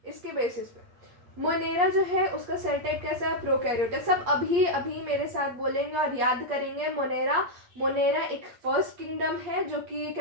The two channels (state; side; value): late; left; 8.5 ms